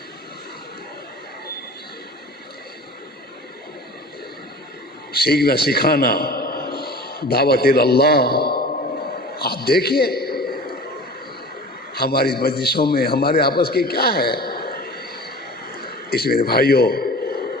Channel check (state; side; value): normal; both; correlation 0.38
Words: سیکھنا سکھانا، دعوت اللہ۔ آپ دیکھیے ہماری مجلسوں میں ہمارے آپس کے کیا ہے، اس میرے بھائیوں